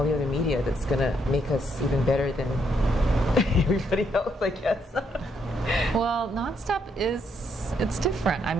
the other media that's gonna make us even better than everybody else, I guess? Well, Nonstop it's different. I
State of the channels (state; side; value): normal; both; correlation 0.74